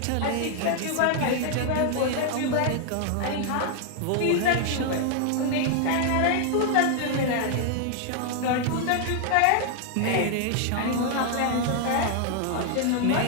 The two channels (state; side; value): different; both; correlation 0.00